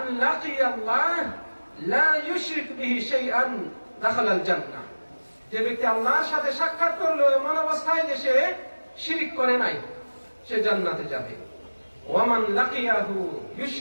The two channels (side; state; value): both; inverted; correlation -1.00